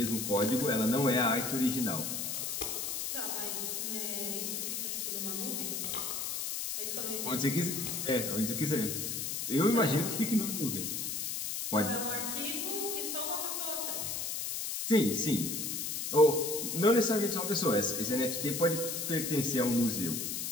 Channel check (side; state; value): left; noise; hiss, 2 dB below the sound